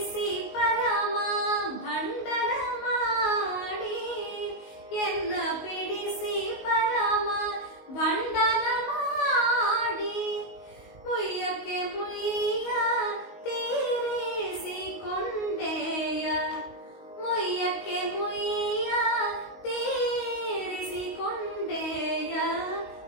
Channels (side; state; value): right; late; 19 ms